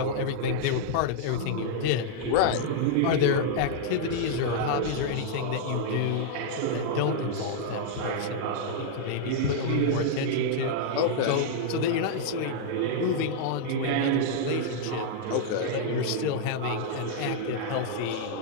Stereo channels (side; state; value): both; different; correlation -0.01